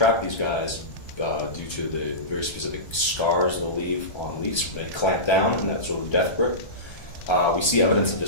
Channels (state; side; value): late; right; 1.3 ms